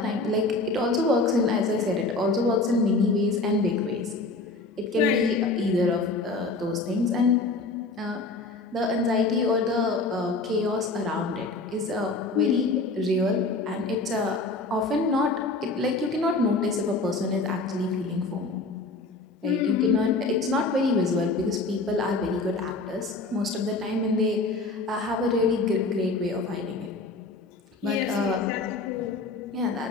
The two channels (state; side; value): quieter; right; 3.5 dB